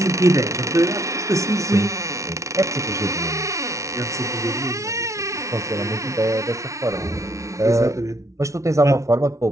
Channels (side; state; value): left; late; 0.14 ms